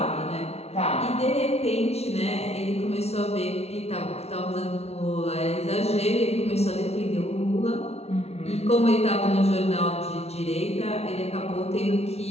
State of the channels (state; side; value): late; right; 0.31 ms